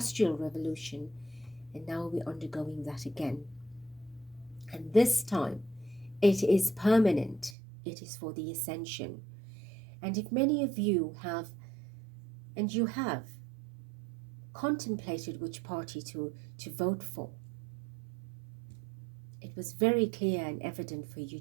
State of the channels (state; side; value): drops out; left; at 7.6 s